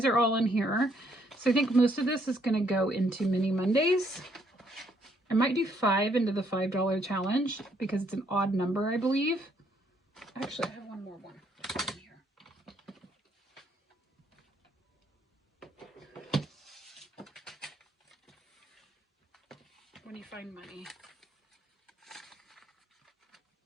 are all in here. So I think most of this is going to go into Mini Mondays. I might do 5 into the $5 challenge because it's an odd number, I believe. Actually, I have one more one in here. When you find money.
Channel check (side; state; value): both; normal; correlation 0.69